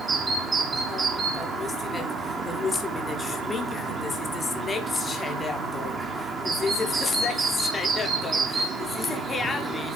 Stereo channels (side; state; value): both; normal; correlation 0.67